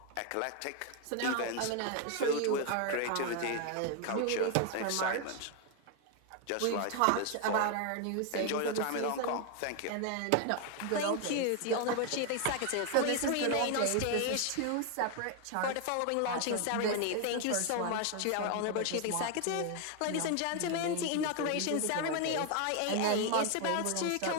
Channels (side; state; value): both; different; correlation 0.01